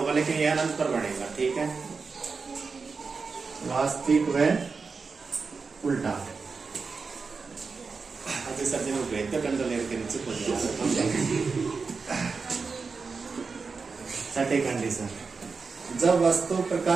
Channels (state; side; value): quieter; left; 4.8 dB